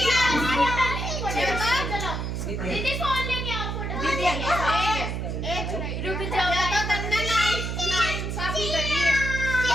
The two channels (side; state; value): right; noise; hum, 3 dB below the sound